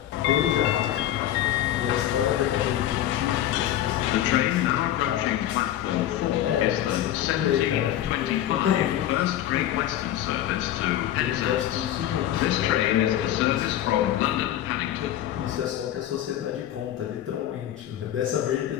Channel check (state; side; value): quieter; right; 12.2 dB